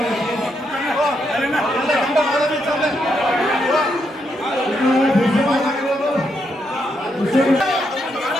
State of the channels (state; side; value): normal; both; correlation 0.79